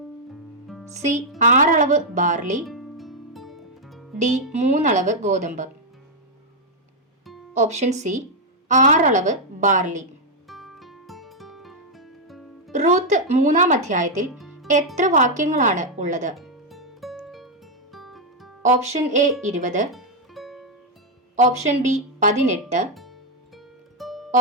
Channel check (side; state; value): both; normal; correlation -0.01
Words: സി. 6 അളവ് ബാർലി. ഡി. 3 അളവ് ഗോതമ്പ്. Option C. 6 അളവ് ബാർലി. റൂത്ത് 3-ാം അധ്യായത്തിൽ എത്ര വാക്യങ്ങളാണ് ഉള്ളത്? Option A 20. Option B 18.